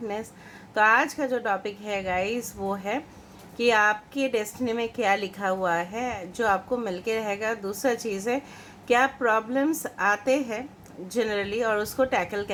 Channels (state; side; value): identical; both; correlation 1.00